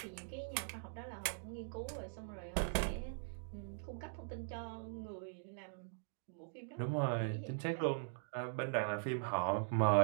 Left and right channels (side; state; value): left; silent; digital silence